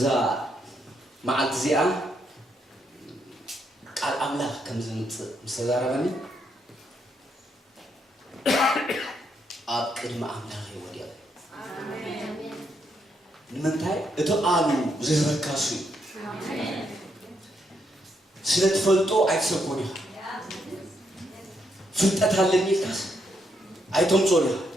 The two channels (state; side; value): normal; both; correlation 0.77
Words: ማዓልት ዚኣ ቃል አምላክ ከምዝምጽ ምሰዛረበኒ ኣብ ቅድመ አምላክ ይወድያ አሜን ንምንታይ እቶ ቃሉ ዝዝበካሱ አሜን ስለተፈልጦ አይተሰኮኒ ፍልጠት አለኝ ካስ አይቶም ጾሪ